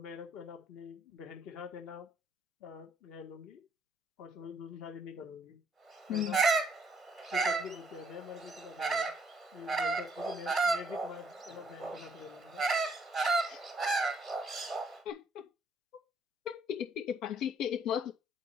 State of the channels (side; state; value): both; normal; correlation 0.66